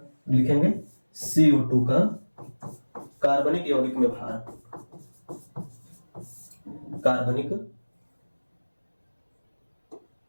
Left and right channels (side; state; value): both; inverted; correlation -1.00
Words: लिखेंगे CO2 का कार्बनिक यौगिक में भार, कार्बनिक